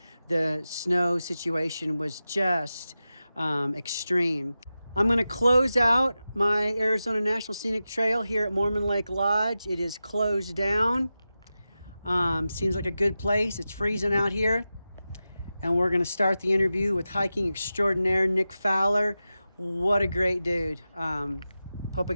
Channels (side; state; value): both; inverted; correlation -0.93